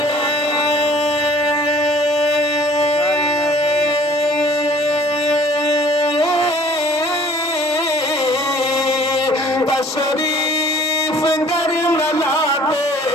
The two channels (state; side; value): normal; both; correlation 0.54